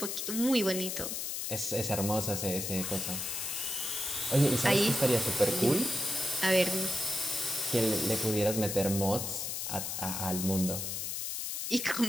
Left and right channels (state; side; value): noise; left; hiss, 3 dB below the sound